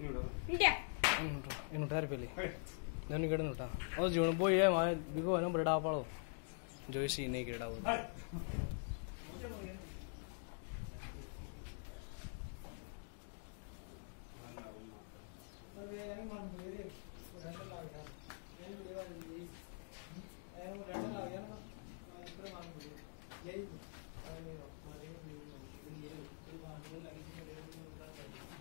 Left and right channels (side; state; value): right; silent; digital silence